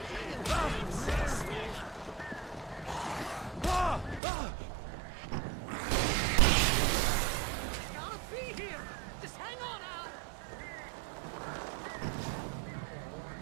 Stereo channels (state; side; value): drops out; left; at 4.2 s